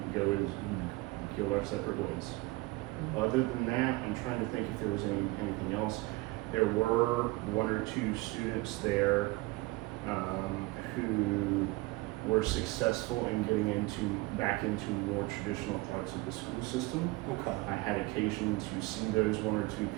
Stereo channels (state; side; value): quieter; left; 22.1 dB